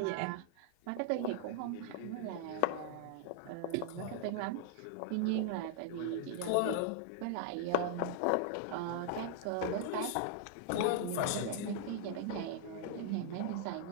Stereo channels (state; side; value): different; both; correlation -0.01